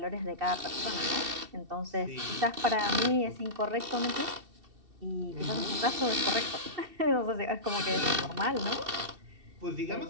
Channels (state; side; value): late; left; 2.7 ms